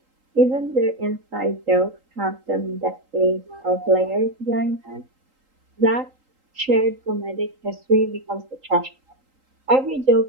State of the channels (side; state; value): left; late; 3.8 ms